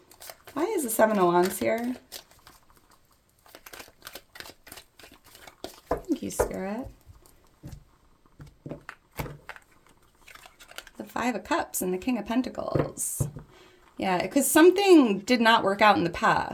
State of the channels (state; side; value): identical; both; correlation 1.00